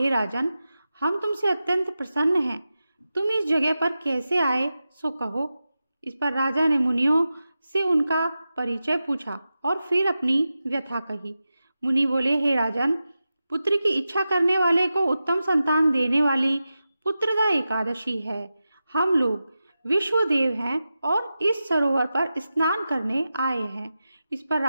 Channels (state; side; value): inverted; both; correlation -0.92